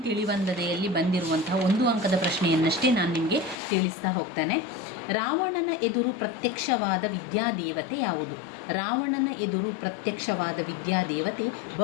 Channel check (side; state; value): right; drops out; at 3.6 s